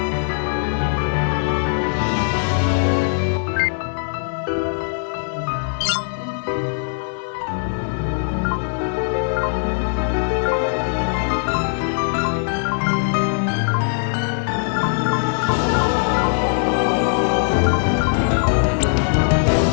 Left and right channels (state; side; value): silent; right; digital silence